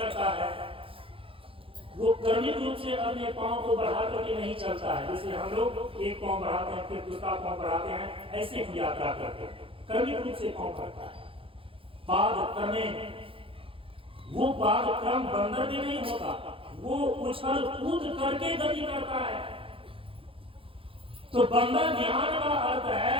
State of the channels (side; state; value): left; late; 0.26 ms